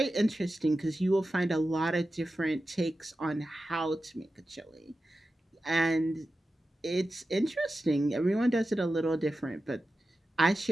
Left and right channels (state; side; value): normal; both; correlation 0.93